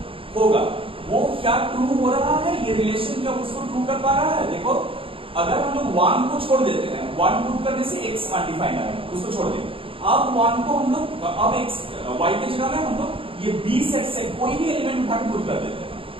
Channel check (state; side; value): late; left; 0.26 ms